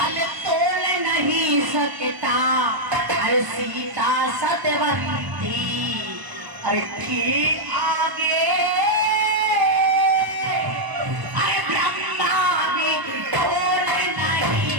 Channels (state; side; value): late; left; 1.0 ms